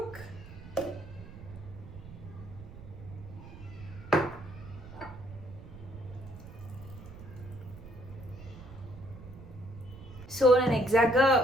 So నేను ఎగ్జాక్ట్గా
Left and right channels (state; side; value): noise; right; rumble, 15 dB below the sound